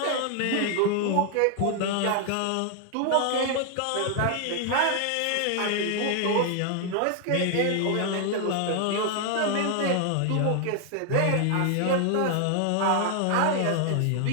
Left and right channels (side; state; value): both; different; correlation 0.00